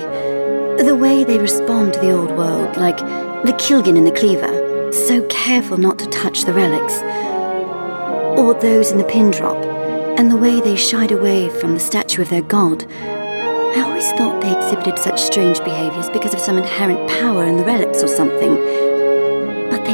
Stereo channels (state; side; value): inverted; both; correlation -1.00